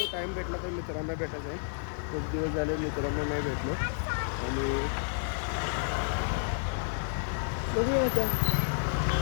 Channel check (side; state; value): right; silent; digital silence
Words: टाईम भेटला तर मित्रांना भेटायचं आहे. खूप दिवस झाले मित्रांना नाही भेटलो आणि बघूया आता